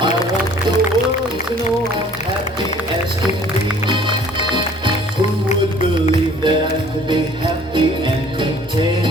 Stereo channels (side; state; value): both; normal; correlation 0.54